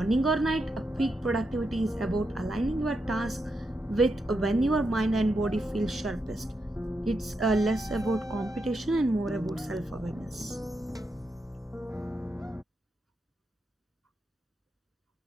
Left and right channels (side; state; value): both; normal; correlation 0.84